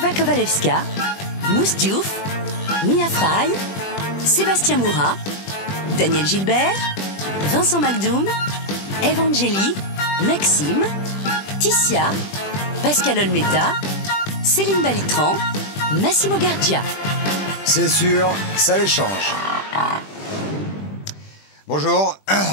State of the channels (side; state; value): right; late; 20 ms